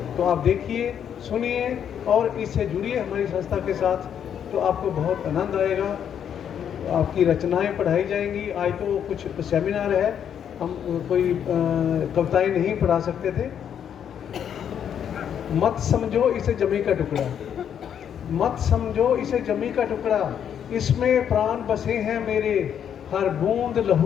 तो आप देखिए, सुनिए और इससे जुड़िए हमारी संस्था के साथ, तो आपको बहुत आनंद आएगा। आपकी रचनाएं पढ़ाई जाएंगी। आज तो कुछ सेमिनार है, हम कोई कविताएं नहीं पढ़ा सकते थे। मत समझो इसे जमी का टुकड़ा, मत समझो इसे जमी का टुकड़ा, इसमें प्राण बसे हैं मेरे, हर बूंद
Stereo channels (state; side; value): quieter; right; 8.7 dB